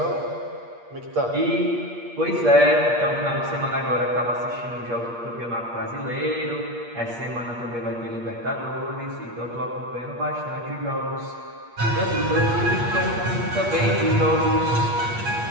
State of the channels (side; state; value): left; late; 8.5 ms